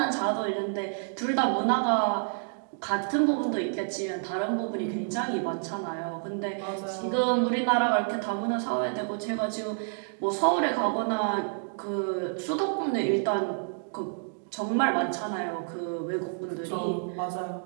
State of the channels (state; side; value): silent; left; digital silence